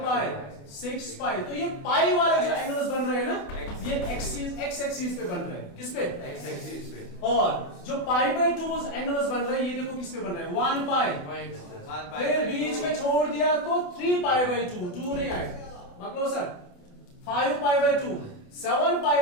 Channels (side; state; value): right; late; 28 ms